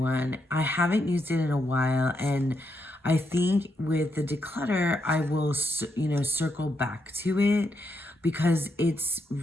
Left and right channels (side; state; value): both; normal; correlation 0.80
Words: I haven't used it in a while, and I think with the declutter, I will, circle back to it, because it's a